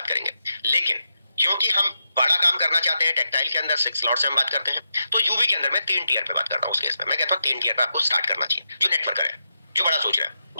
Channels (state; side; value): inverted; both; correlation -0.86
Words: करेंगे। लेकिन क्योंकि हम बड़ा काम करना चाहते हैं, टेक्सटाइल के अंदर 6 स्लॉट से हम बात करते हैं, तो यूवी के अंदर मैं 3 टीयर पे बात करता हूं। उस केस में मैं कहता हूं 3 टीयर पे आपको स्टार्ट करना चाहिए। जो नेटवर्कर है, जो बड़ा सोच रहा है,